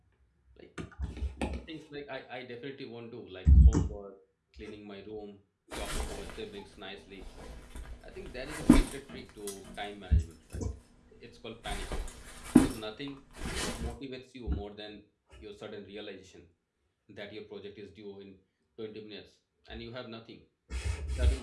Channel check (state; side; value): identical; both; correlation 1.00